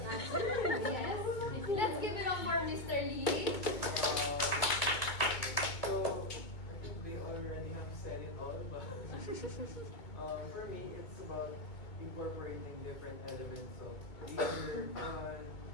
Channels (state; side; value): late; right; 2.2 ms